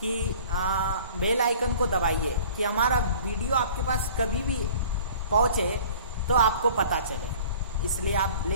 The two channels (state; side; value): inverted; both; correlation -0.47